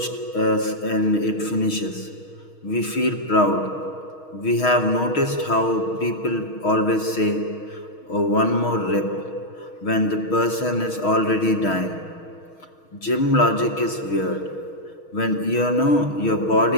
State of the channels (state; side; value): late; right; 6.4 ms